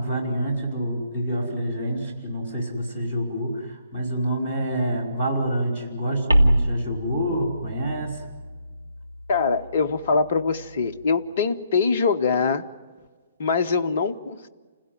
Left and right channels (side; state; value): both; inverted; correlation -0.72